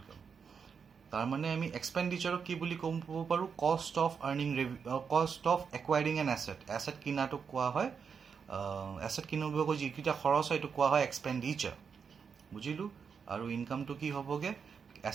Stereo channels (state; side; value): quieter; left; 6.3 dB